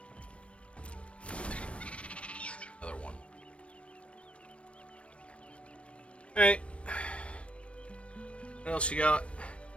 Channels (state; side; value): late; right; 0.061 ms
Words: Another one. Alright. What else you got?